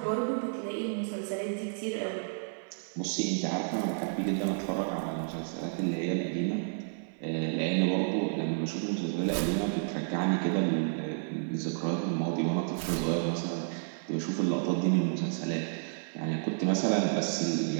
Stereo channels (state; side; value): silent; left; 57 dB below the other